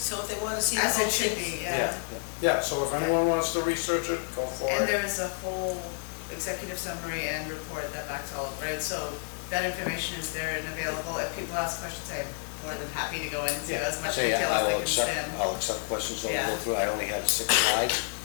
if they want to see the As whole it should thing. be, yeah. Yeah, so if anyone wants to research it, go for And it. there is a whole executive summary and report that backs all of it, so that information is there and available. If people ask questions, I'm more than happy to go into as much Say, detail I will as I can. I'll accept questions, I'll go Yeah. through, I only have 6 slides.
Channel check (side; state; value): right; silent; 58 dB below the other